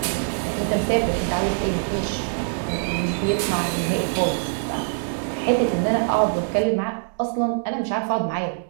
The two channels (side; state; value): left; silent; 63 dB below the other